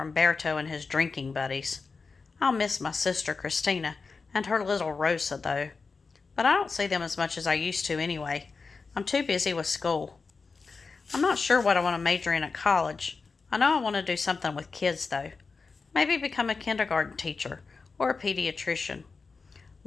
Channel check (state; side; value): quieter; right; 4.5 dB